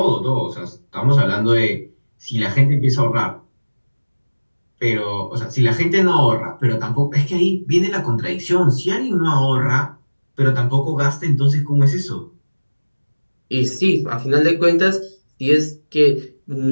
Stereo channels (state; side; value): inverted; both; correlation -1.00